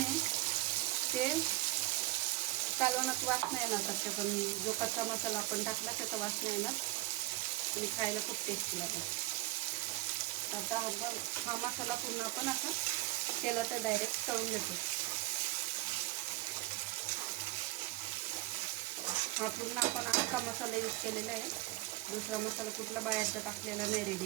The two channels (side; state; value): left; quieter; 20.1 dB